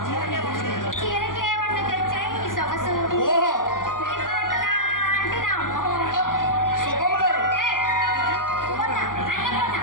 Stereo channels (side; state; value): right; late; 0.90 ms